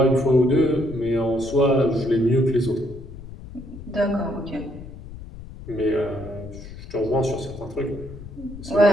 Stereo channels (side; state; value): left; noise; rumble, 14 dB below the sound